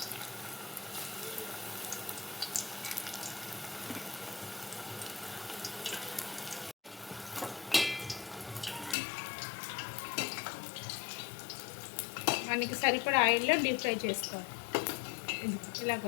మనకి సరిపడా ఆయిల్లో డీప్ ఫ్రై చేసుకోవాలి. ఇలాగ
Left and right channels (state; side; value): drops out; right; at 9.0 s